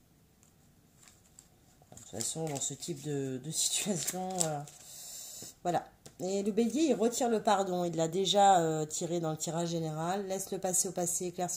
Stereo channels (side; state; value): both; identical; correlation 1.00